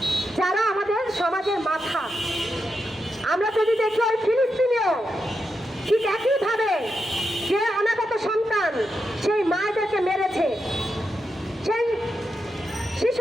যারা আমাদের সমাজের মাথা। আমরা যদি দেখি ওই ফিলিস্তিনেও ঠিক একইভাবে যে অনাগত সন্তান সেই মায়েদেরকে মেরেছে, সেই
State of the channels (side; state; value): both; normal; correlation 0.86